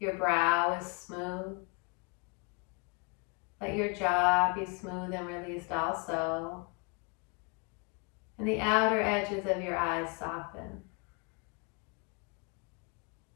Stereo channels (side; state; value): right; quieter; 32.4 dB